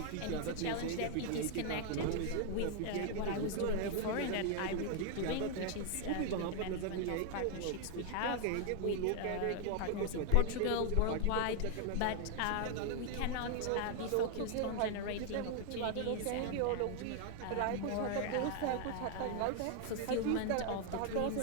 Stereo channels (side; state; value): both; different; correlation 0.00